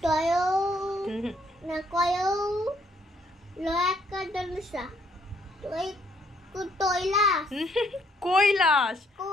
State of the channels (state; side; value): normal; both; correlation 0.68